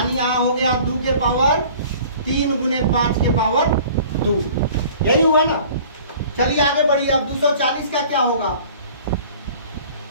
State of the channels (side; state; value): both; inverted; correlation -0.48